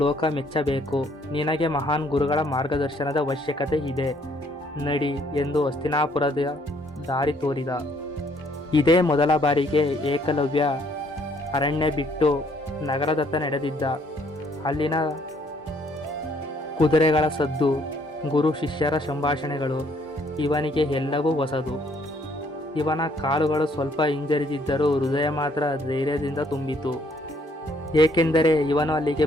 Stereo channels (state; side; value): normal; both; correlation 0.65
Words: ಲೋಕ ಮೆಚ್ಚಬೇಕು. ನಿನಗೆ ಮಹಾನ್ ಗುರುಗಳ ಮಾರ್ಗದರ್ಶನದ ಅವಶ್ಯಕತೆ ಇದೆ. ನಡಿ ಎಂದು ಹಸ್ತಿನಾಪುರದ ದಾರಿ ತೋರಿದ. ಇದೇ ಮೊದಲ ಬಾರಿಗೆ ಏಕಲವ್ಯ ಅರಣ್ಯ ಬಿಟ್ಟು ನಗರದತ್ತ ನಡೆದಿದ್ದ. ಅಲ್ಲಿನ ಕುದುರೆಗಳ ಸದ್ದು, ಗುರು ಶಿಷ್ಯರ ಸಂಭಾಷಣೆಗಳು ಇವನಿಗೆ ಎಲ್ಲವೂ ಹೊಸದು. ಇವನ ಕಾಲುಗಳು ಸ್ವಲ್ಪ ಹಿಂಜರಿದಿದ್ದರೂ ಹೃದಯ ಮಾತ್ರ ಧೈರ್ಯದಿಂದ ತುಂಬಿತು. ಏಕೆಂದರೆ ಇವನು ಅಲ್ಲಿಗೆ